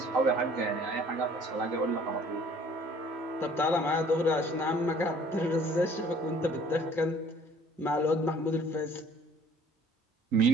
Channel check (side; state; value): both; normal; correlation 0.54